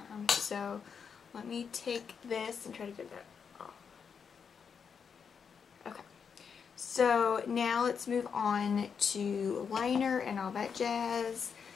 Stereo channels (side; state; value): right; quieter; 6.5 dB